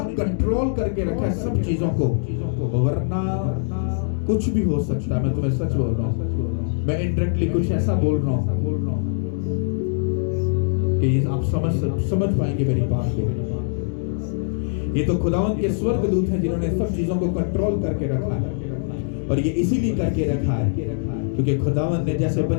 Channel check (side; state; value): right; silent; digital silence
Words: कंट्रोल करके रखा है सब चीजों को, वरना कुछ भी हो सकता है। मैं तुम्हें सच बोल रहा हूँ, मैं इनडायरेक्टली कुछ ऐसा बोल रहा हूँ कि आप समझ पाएंगे मेरी बात को। ये तो खुदावंत के स्वर्गदूत हैं जिन्होंने सब चीजों को कंट्रोल करके रखा है, और ये इसीलिए करके रखा है क्योंकि खुदावंत ने जैसे